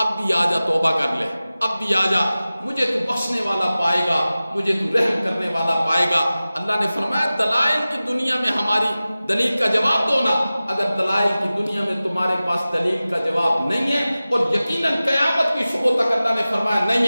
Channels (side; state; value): both; inverted; correlation -0.96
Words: بھی آ جا، توبہ کر لے، اب بھی آ جا، مجھے تو بخشنے والا پائے گا، مجھے تو رحم کرنے والا پائے گا۔ اللہ نے فرمایا دلائل کی دنیا میں ہماری دلیل کا جواب دو نا، اگر دلائل کی دنیا میں تمہارے پاس دلیل کا جواب نہیں ہے اور یقیناً قیامت کی صبح تک اللہ نے فرمایا نہیں